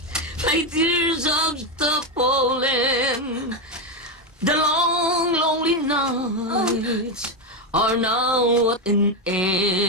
My tears of the fallen. The long, lonely nights are now at an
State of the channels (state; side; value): normal; both; correlation 0.09